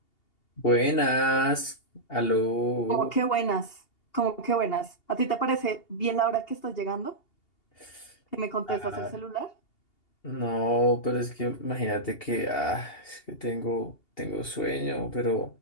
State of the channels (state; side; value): late; right; 2.8 ms